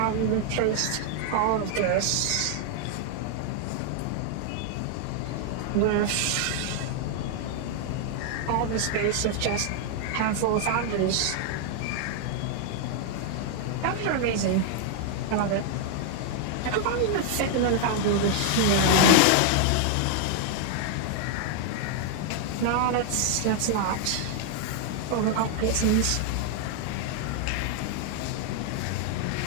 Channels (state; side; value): different; both; correlation 0.00